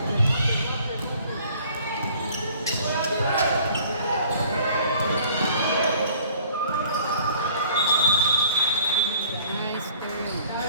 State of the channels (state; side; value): inverted; both; correlation -0.54